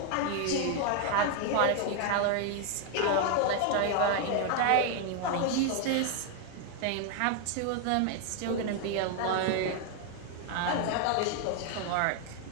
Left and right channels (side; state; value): both; different; correlation 0.00